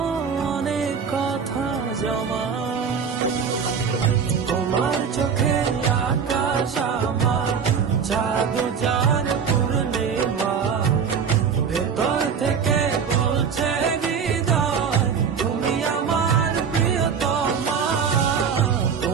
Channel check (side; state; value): left; quieter; 6.5 dB